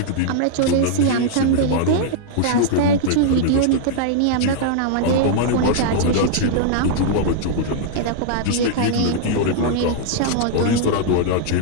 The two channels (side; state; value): both; different; correlation -0.01